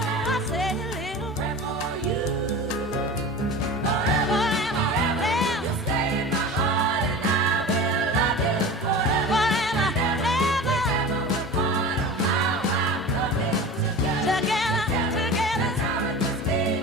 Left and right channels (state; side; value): normal; both; correlation 0.34